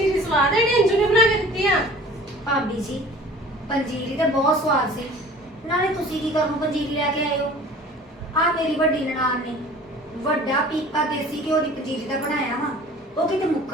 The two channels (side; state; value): both; normal; correlation 0.45